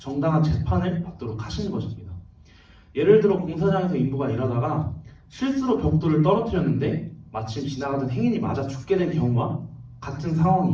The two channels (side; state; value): both; identical; correlation 1.00